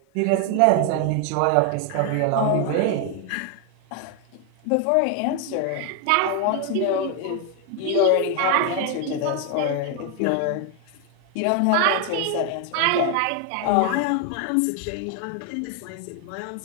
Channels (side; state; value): both; different; correlation 0.00